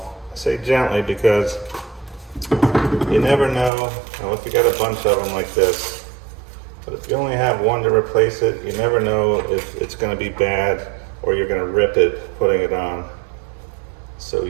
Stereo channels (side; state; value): left; drops out; at 3.7 s